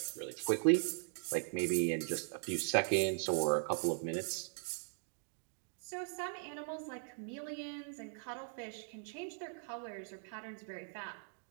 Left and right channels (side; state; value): left; silent; digital silence